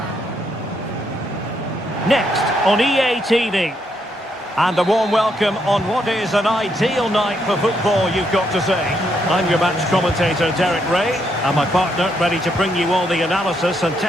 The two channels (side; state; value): both; normal; correlation 0.76